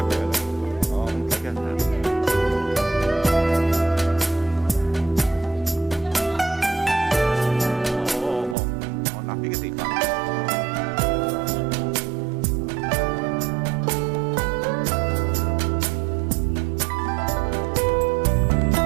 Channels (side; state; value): left; drops out; at 8.6 s